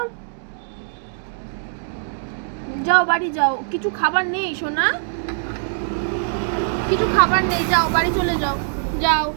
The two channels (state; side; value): silent; left; digital silence